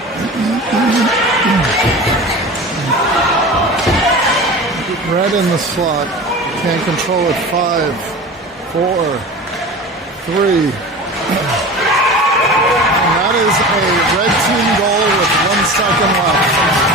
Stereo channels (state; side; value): normal; both; correlation 0.34